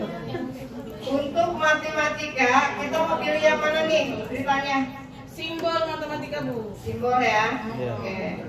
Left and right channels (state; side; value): identical; both; correlation 1.00